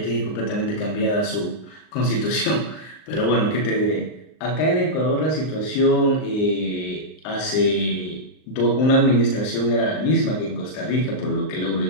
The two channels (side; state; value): right; late; 39 ms